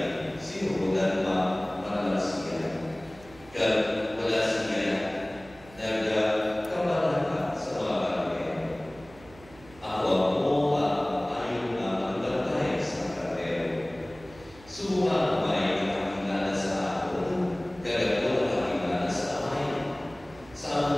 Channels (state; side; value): noise; right; hum, 23 dB below the sound